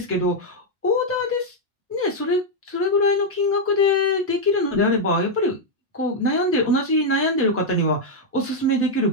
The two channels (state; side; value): normal; both; correlation -0.01